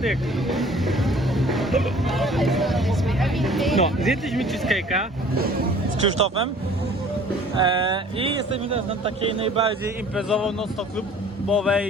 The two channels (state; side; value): normal; both; correlation 0.51